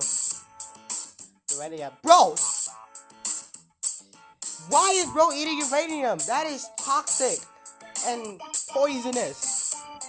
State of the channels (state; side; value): identical; both; correlation 1.00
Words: Uranium, bro. Why is bro eating uranium? That is toxic and poisonous.